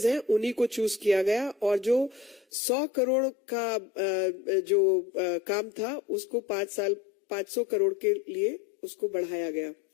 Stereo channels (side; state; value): right; drops out; at 2.5 s